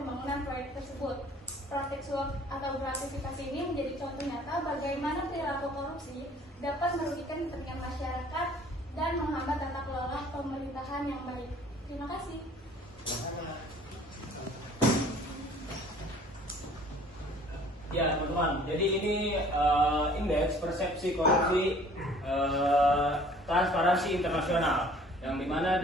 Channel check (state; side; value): normal; both; correlation 0.53